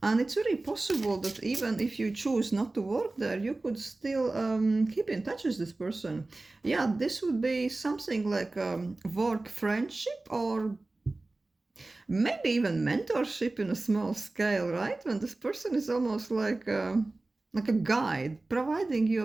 And it's very possible that even if you choose not to work there, you could still keep in touch with this person. Yeah, this would be something like work friendship, or maybe even mentorship in a small scale, right? When this person is almost like a guide, providing you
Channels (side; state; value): left; quieter; 3.1 dB